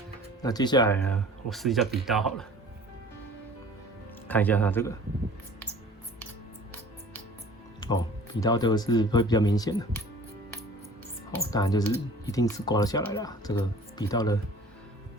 那接下来呢，我试一下笔刀好了，看一下它这个，笔刀这个是会比较明显的。当然就是一定是刮得下来啦，这个笔刀的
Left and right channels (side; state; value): both; normal; correlation 0.47